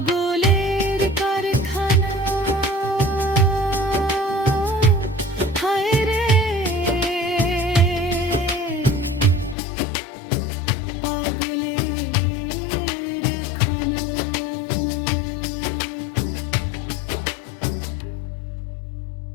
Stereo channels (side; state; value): right; drops out; at 9.6 s